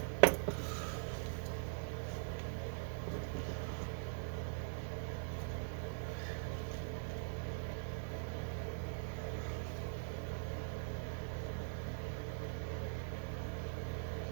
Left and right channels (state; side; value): silent; left; digital silence